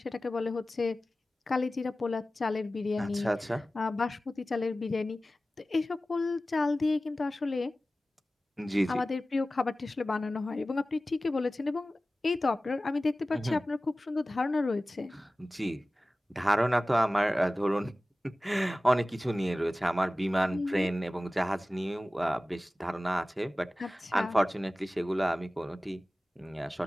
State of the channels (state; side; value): normal; both; correlation 0.96